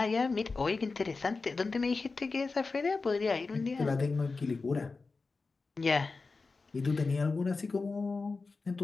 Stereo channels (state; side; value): quieter; right; 4.1 dB